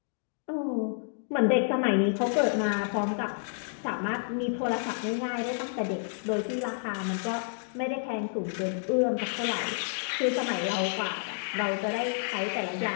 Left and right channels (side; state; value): right; silent; digital silence